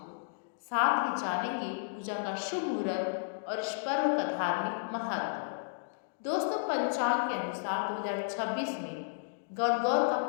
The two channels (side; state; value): right; silent; digital silence